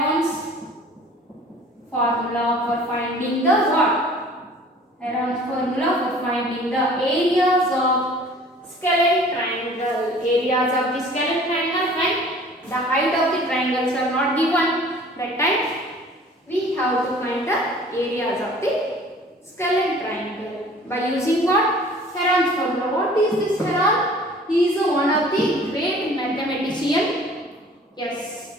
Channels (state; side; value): normal; both; correlation 0.49